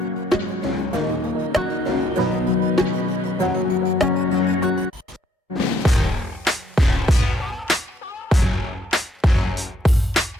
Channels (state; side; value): normal; both; correlation 0.69